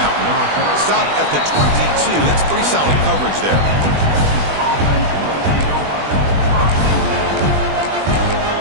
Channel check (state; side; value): late; left; 20 ms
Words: Stop at the 22. That's pretty solid coverage there.